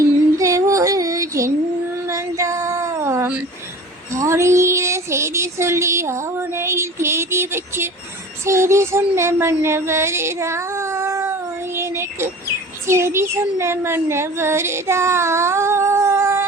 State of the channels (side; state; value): both; normal; correlation 0.40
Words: ஒரு ஜென்மந்தாம் ஆடியில செய்தி சொல்லி ஆவணையில் தேதி வச்சு செய்தி சொன்ன மன்னவருதா எனக்கு செய்தி சொன்ன மன்னவருதா